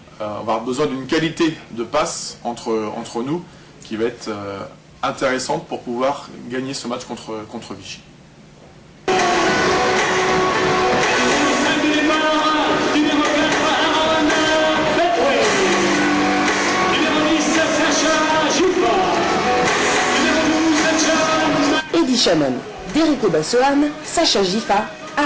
on va avoir besoin d'une qualité de passe entre nous qui va être intéressante pour pouvoir gagner ce match contre Vichy. Eddie Shannon, Derrick Obasohan, Sacha Gifa,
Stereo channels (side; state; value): both; identical; correlation 1.00